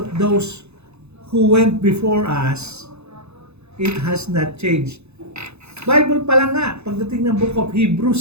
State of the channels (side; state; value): left; late; 0.81 ms